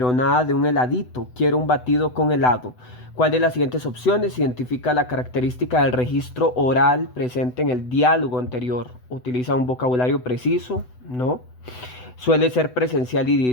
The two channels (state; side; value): late; right; 8.0 ms